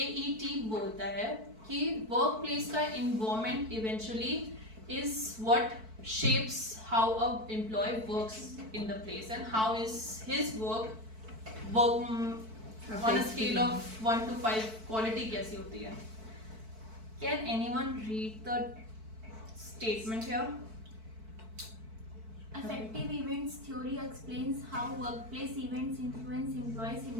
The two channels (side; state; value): left; late; 4.5 ms